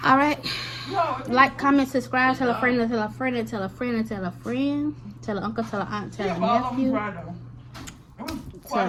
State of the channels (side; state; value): both; identical; correlation 1.00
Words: All right. No. Like, comment, subscribe, tell a friend, tell a friend, tell a friend, tell a friend, tell an uncle, tell an aunt, tell a All of them nephew. dry though. It was quite